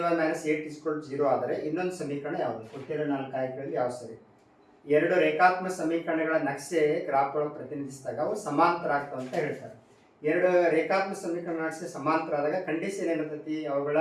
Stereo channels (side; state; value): both; identical; correlation 1.00